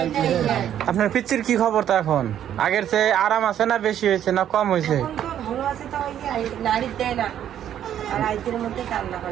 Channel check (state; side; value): quieter; left; 10.4 dB